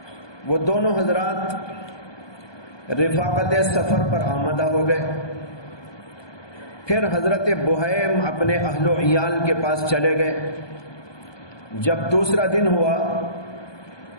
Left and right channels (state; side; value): late; right; 1.2 ms